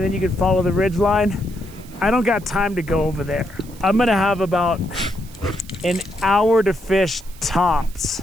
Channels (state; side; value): noise; right; hiss, 22 dB below the sound